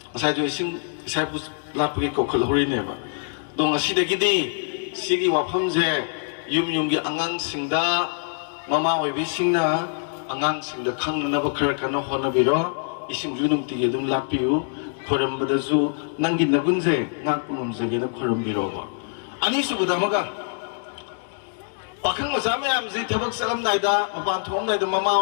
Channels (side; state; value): right; silent; digital silence